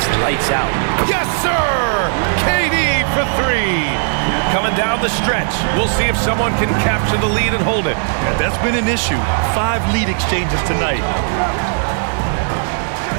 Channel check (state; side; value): silent; left; digital silence